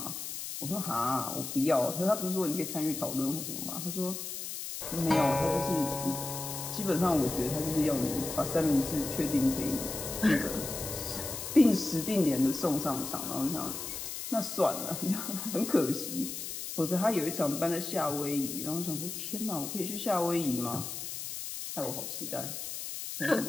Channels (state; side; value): noise; left; hiss, 6 dB below the sound